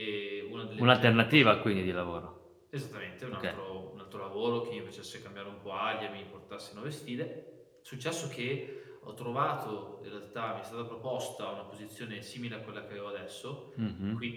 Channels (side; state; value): both; identical; correlation 1.00